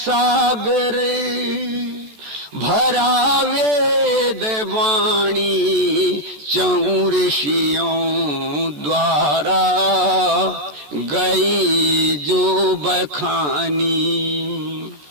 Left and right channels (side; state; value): left; late; 14 ms